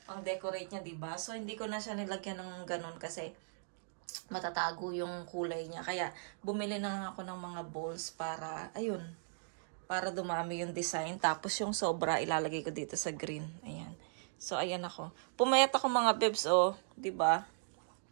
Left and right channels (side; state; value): left; silent; digital silence